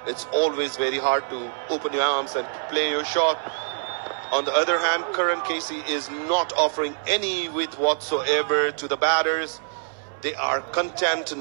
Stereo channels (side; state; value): left; silent; 62 dB below the other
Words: it's always very hard to open your arms and play your shot. On the other hand, Karan Casey is not offering any width whatsoever to the batters. They are content,